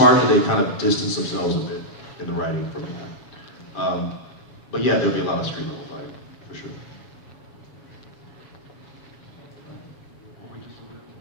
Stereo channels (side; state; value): right; late; 7.1 ms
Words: that they kind of distance themselves a bit in the writing from that. But yeah, there'll be a lot of street level fighting, for sure.